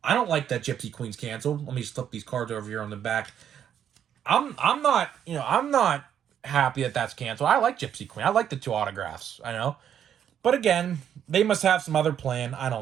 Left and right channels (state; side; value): quieter; left; 9.2 dB